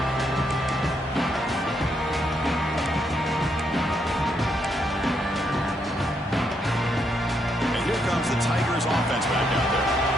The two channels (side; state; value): both; normal; correlation 0.77